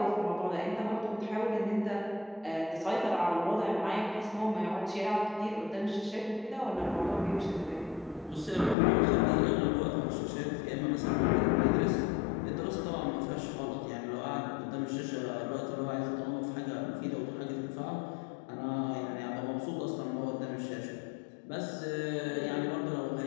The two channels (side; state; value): right; drops out; at 8.8 s